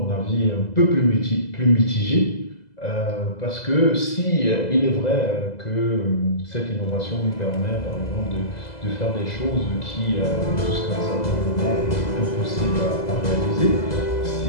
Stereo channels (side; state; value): right; late; 2.0 ms